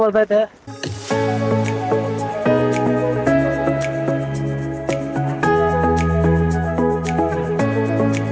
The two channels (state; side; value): identical; both; correlation 1.00